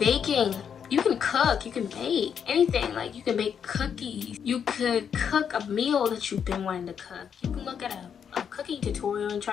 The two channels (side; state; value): right; quieter; 7.6 dB